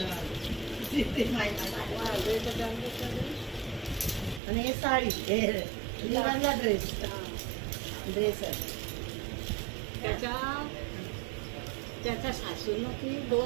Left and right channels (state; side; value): drops out; left; at 4.4 s